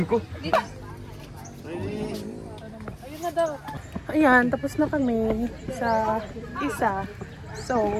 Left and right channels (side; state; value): both; identical; correlation 1.00